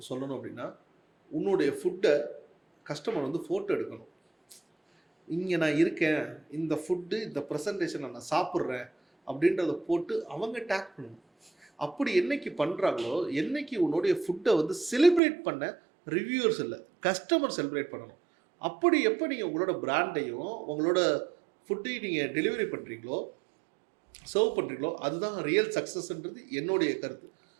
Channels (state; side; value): drops out; left; at 15.2 s